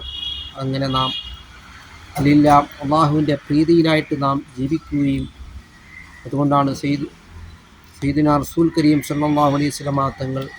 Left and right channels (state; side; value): identical; both; correlation 1.00